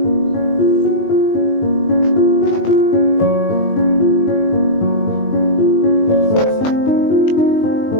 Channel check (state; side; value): late; right; 20 ms